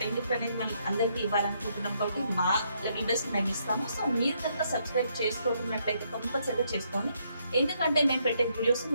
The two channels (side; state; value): both; inverted; correlation -0.73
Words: గిఫ్ట్ అనేది మనం అందరికీ ఇవ్వాలనుకుంటున్నాం కాబట్టి మా లెవెల్ బెస్ట్ మేము ఇస్తాము. సో మీరు కనుక సబ్స్క్రైబ్ చేసుకోకున్నట్లయితే కంపల్సరీగా చేసుకోండి, ఎందుకంటే మేము పెట్టే వీడియోస్